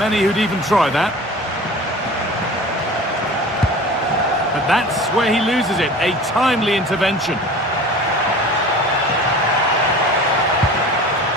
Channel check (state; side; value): normal; both; correlation 0.39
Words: who'd even try that. But that's where he loses it. A timely intervention.